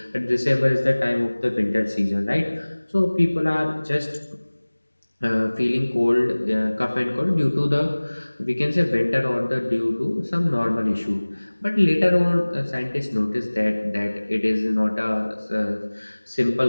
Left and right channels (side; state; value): both; inverted; correlation -1.00